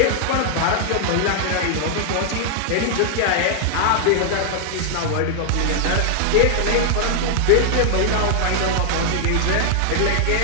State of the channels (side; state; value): both; different; correlation 0.00